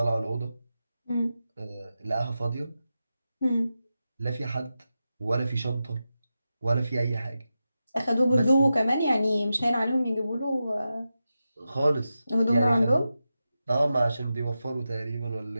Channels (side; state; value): both; inverted; correlation -0.91